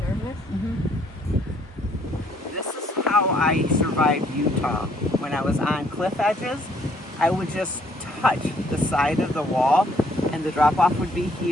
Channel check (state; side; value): normal; both; correlation 0.65